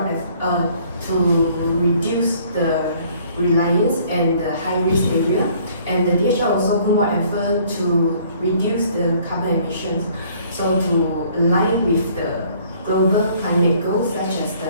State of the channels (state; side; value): inverted; both; correlation -0.59